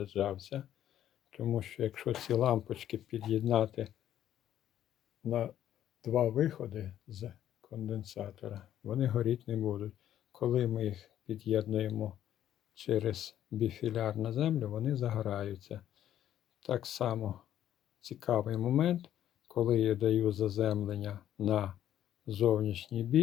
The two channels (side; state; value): right; quieter; 11.3 dB